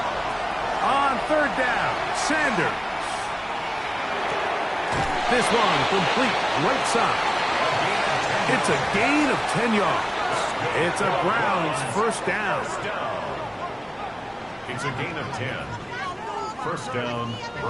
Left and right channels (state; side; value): identical; both; correlation 1.00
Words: On 3rd down, Sanders. This one complete right side. It's a gain of 10 yards. It's a Browns first down. It's a gain of 10. First down,